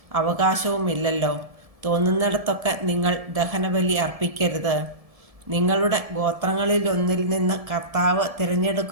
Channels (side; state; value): left; late; 1.7 ms